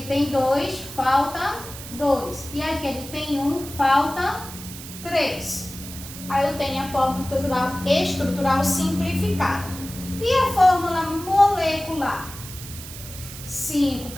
tem 2, falta 2. E aqui ele tem 1, falta 3. Aí eu tenho a fórmula estrutural simplificada. E a fórmula molecular? 5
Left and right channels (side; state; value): right; noise; hiss, 13 dB below the sound